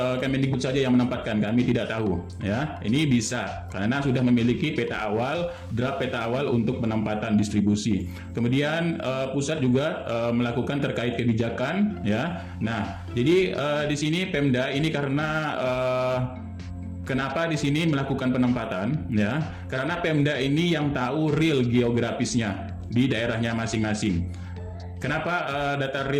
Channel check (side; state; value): both; identical; correlation 1.00